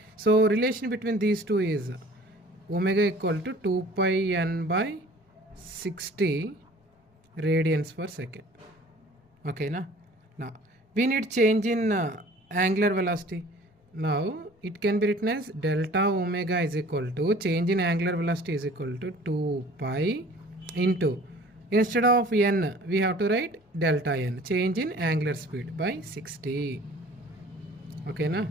So relation between these two is omega equal to 2πn/60 radians per second. ఓకేనా? నా we need change in angular velocity. Now it can be written as delta omega is equal to change in angular velocity is equal to 2pi into, instead of n we have to write delta n, change in angular speed by 60. Okay na?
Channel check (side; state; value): both; normal; correlation 0.49